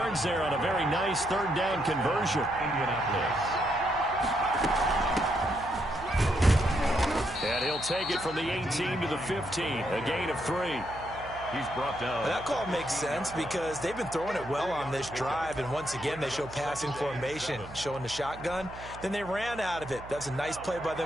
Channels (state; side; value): noise; right; hum, 16 dB below the sound